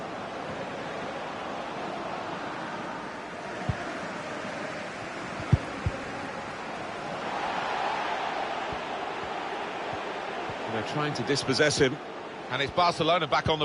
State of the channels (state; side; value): identical; both; correlation 1.00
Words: They're trying to dispossess him. And it's Barcelona back on